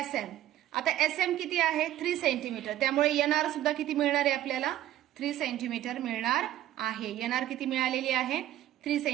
आता SM किती आहे, 3 सेंटीमीटर, त्यामुळे NR सुद्धा किती मिळणार आहे आपल्याला, 3 सेंटीमीटर मिळणार आहे. NR किती मिळालेली आहे, 3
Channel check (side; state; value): left; quieter; 13.0 dB